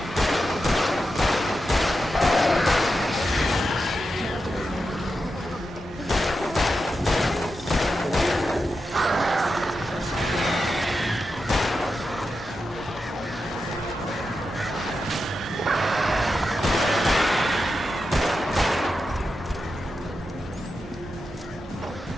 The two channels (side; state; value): both; normal; correlation 0.89